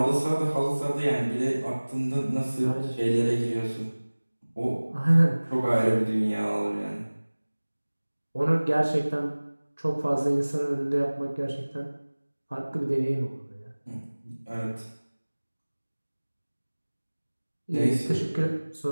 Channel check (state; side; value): inverted; both; correlation -1.00